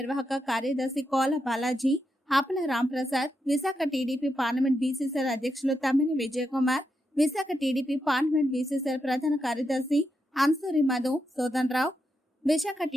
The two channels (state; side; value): normal; both; correlation 0.84